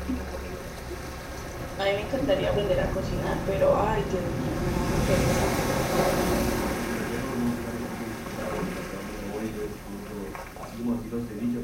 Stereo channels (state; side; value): identical; both; correlation 1.00